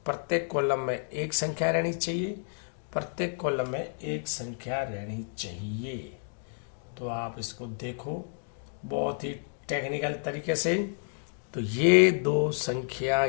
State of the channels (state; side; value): silent; right; digital silence